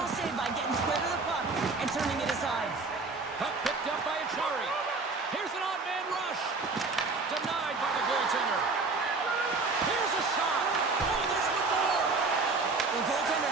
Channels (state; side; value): quieter; left; 3.9 dB